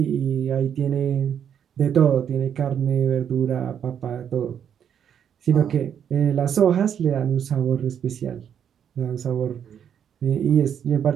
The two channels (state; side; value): quieter; left; 8.6 dB